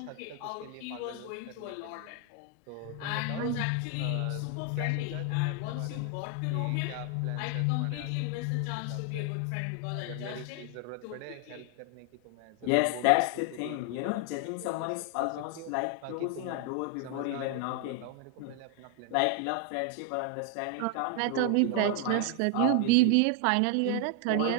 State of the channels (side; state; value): both; different; correlation 0.00